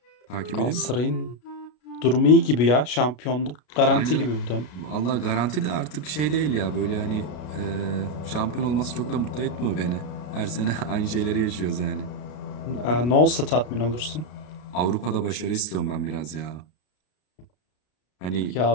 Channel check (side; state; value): right; late; 33 ms